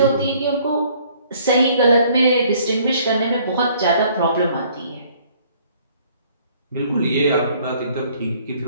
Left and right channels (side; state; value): both; inverted; correlation -0.59